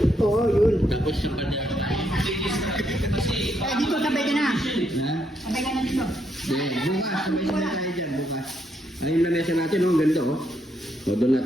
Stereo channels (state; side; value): normal; both; correlation 0.76